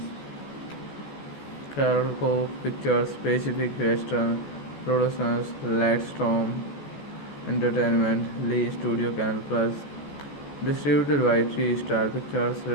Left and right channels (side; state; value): right; late; 14 ms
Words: Carol Cove Pictures, Pacific Western Productions, Lightstorm Entertainment, Lee Studio Canal Plus. Distributed by Three Star Pictures.